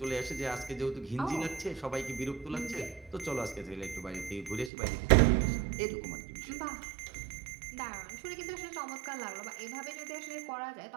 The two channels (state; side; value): drops out; left; at 4.7 s